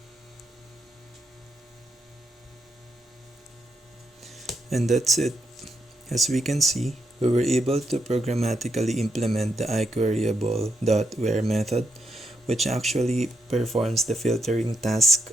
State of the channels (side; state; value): both; normal; correlation 0.80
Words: And that's it. As we can see, we were able to programmatically implement the iQueryable.where method, which actually performs the filtering task